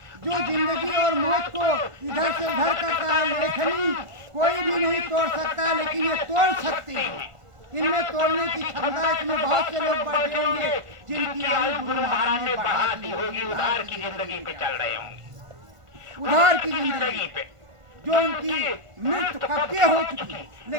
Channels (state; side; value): late; left; 1.5 ms